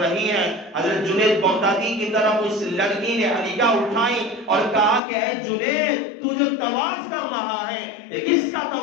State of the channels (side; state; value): right; drops out; at 5.0 s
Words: ہے؟ حضرت جنید بغدادی کی طرف اس لڑکی نے نگاہ اٹھائی اور کہا کہ اے جنید، تو جو طواف کر رہا ہے یہ کس کا